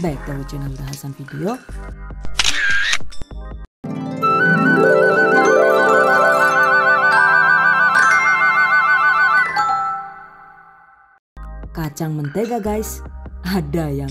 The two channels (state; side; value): identical; both; correlation 1.00